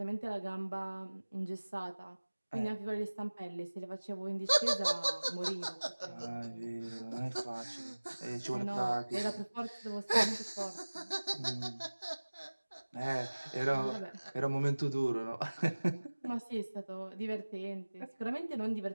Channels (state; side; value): inverted; both; correlation -1.00